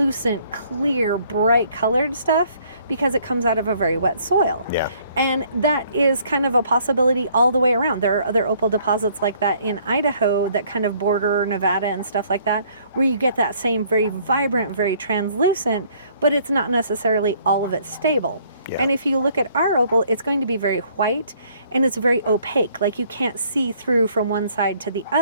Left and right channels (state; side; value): inverted; both; correlation -0.61